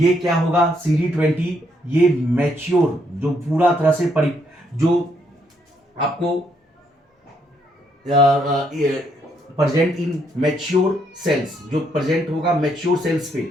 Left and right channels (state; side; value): normal; both; correlation 0.73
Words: क्या होगा? CD20 ये मैच्योर जो पूरा तरह से जो आपको प्रेजेंट इन मैच्योर सेल्स, जो प्रेजेंट होगा मैच्योर सेल्स